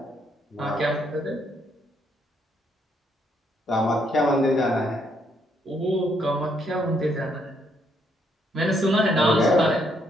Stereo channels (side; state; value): both; normal; correlation 0.72